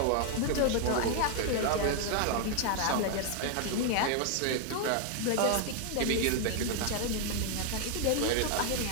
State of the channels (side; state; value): both; different; correlation 0.00